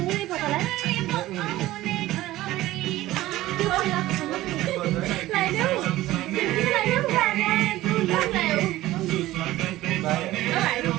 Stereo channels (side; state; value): left; quieter; 16.3 dB